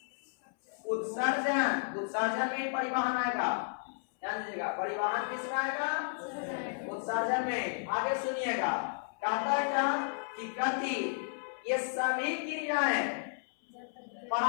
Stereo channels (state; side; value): silent; right; 56 dB below the other